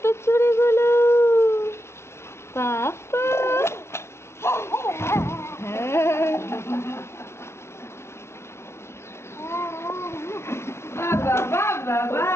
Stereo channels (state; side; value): late; right; 0.13 ms